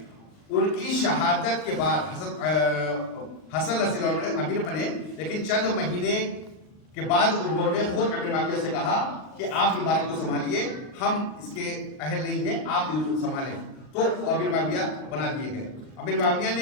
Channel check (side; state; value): right; late; 39 ms